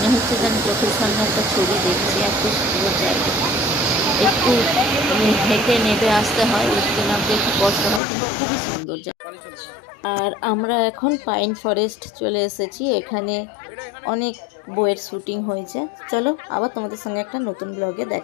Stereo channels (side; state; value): right; drops out; at 8.0 s